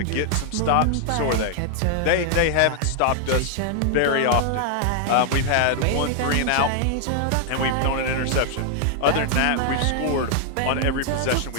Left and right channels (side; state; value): both; different; correlation 0.00